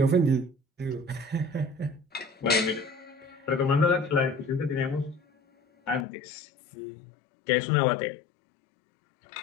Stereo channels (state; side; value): drops out; right; at 6.1 s